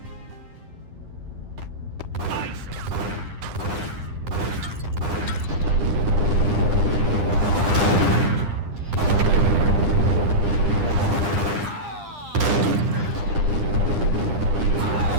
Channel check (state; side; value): late; left; 9.9 ms